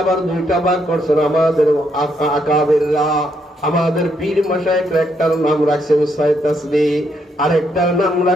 আবার দুইটা ভাগ করছেন আমাদের আকাবেররা, আমাদের পীর মাশায়েখরা। একটার নাম রাখছেন ৬ তাসবিহ, আরেকটার নাম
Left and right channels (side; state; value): both; normal; correlation 0.75